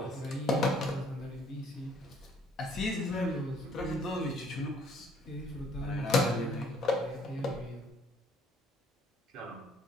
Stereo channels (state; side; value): normal; both; correlation 0.61